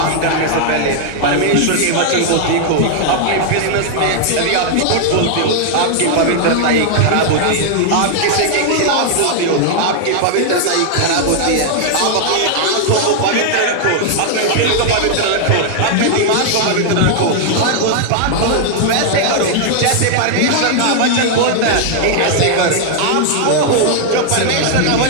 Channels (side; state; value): both; different; correlation 0.00